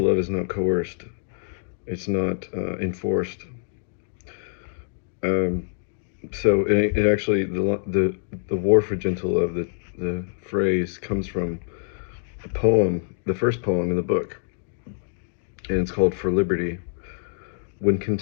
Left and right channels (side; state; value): right; silent; digital silence